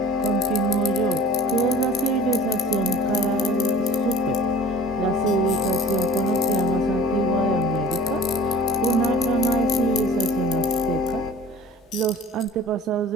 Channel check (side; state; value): both; normal; correlation 0.44